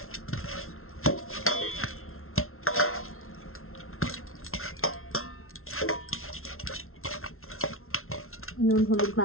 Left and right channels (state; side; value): late; right; 0.62 ms